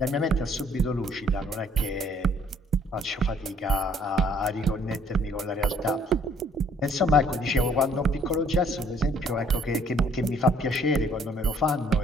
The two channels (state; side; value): normal; both; correlation 0.61